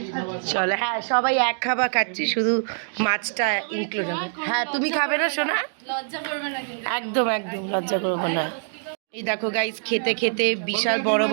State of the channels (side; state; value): left; silent; digital silence